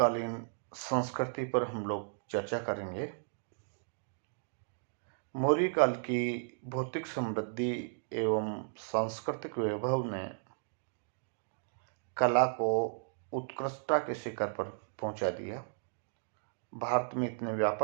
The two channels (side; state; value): left; silent; digital silence